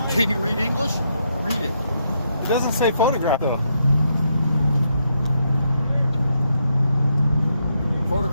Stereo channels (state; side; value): inverted; both; correlation -0.78